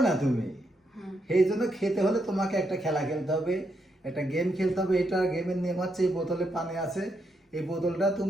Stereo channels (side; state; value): both; normal; correlation 0.80